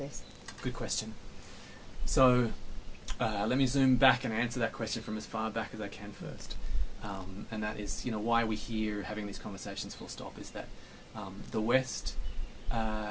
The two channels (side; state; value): both; identical; correlation 1.00